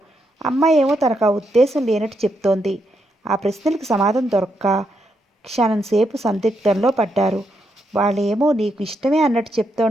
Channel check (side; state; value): both; normal; correlation 0.80